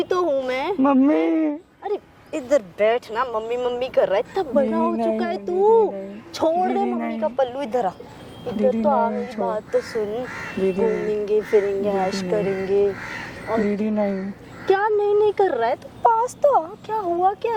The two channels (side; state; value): both; identical; correlation 1.00